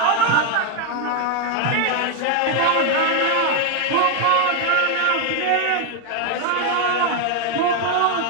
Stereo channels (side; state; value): both; different; correlation 0.01